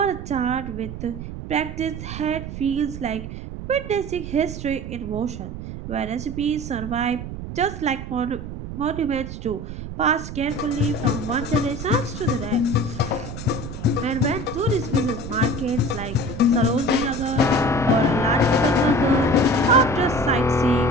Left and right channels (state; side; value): noise; right; rumble, 9 dB below the sound